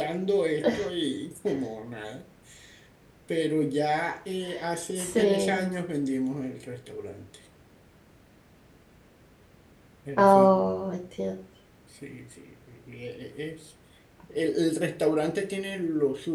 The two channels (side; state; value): both; identical; correlation 1.00